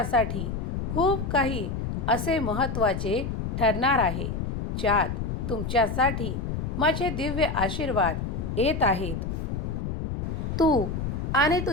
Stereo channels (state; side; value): noise; left; rumble, 3 dB below the sound